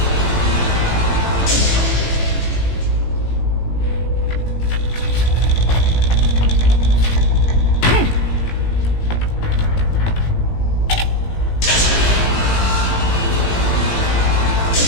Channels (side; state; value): right; late; 18 ms